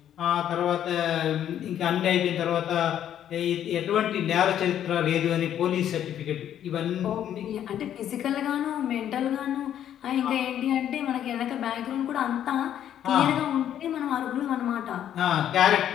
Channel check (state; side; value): quieter; right; 10.4 dB